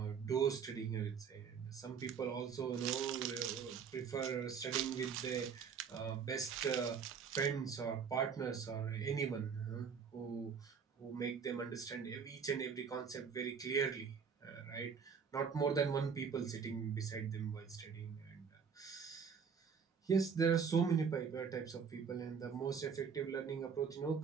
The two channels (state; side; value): quieter; left; 6.4 dB